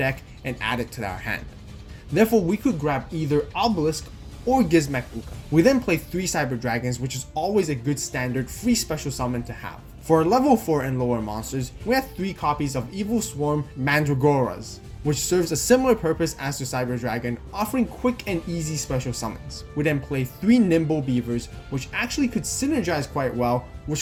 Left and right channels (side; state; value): both; identical; correlation 1.00